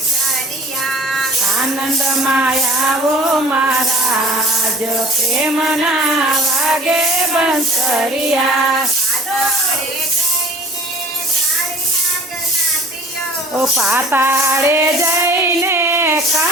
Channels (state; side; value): normal; both; correlation 0.47